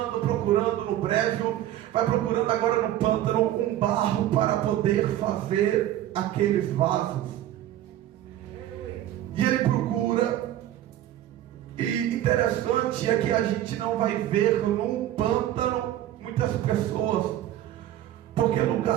procurando no brejo, vai procurando agora no pântano um barro para poder fazer aqueles vasos. E ele procura, e interessante é que a gente não vai ver num pântano muitas pessoas. Porque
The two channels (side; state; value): left; quieter; 12.9 dB